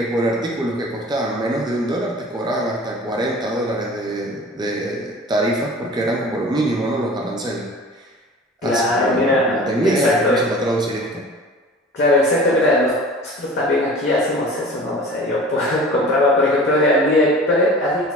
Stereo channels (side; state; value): both; normal; correlation 0.41